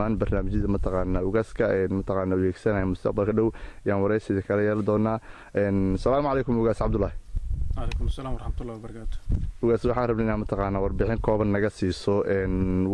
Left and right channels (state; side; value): identical; both; correlation 1.00